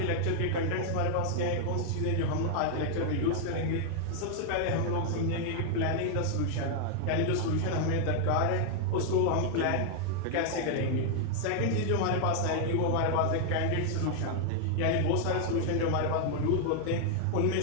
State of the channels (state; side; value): different; both; correlation 0.00